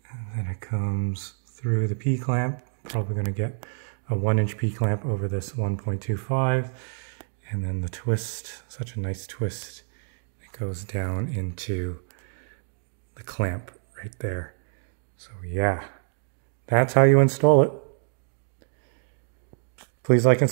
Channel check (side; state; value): left; silent; digital silence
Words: and then it comes through the P-clamp. Probably going to get a 1-inch P-clamp over this 1.25, and then the twist, such a nice twist, it goes down into the clamp right there. So yeah, that's how you install it. Please like and